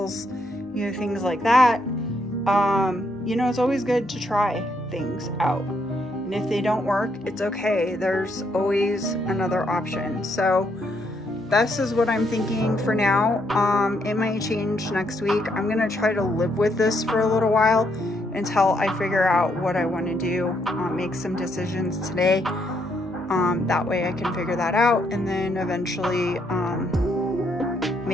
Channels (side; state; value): both; normal; correlation 0.74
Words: you know, things like that. You know, it's always good to try things out. And if they don't work, it's okay. There's always another option. So this is what I'm thinking for now. It might change next week. I'm gonna try to live with this for a little while until I figure out what I want to do, make some decisions today. That way I can figure that out, and then eventually